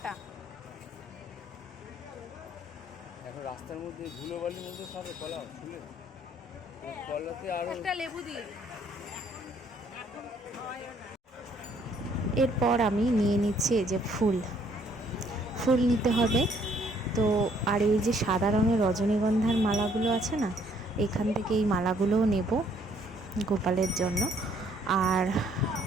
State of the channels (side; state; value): both; normal; correlation 0.64